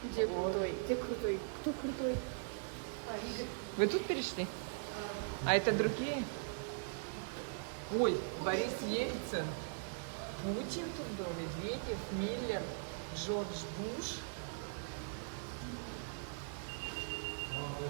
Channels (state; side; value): silent; left; digital silence